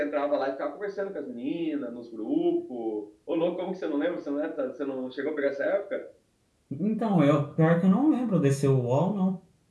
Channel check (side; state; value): both; identical; correlation 1.00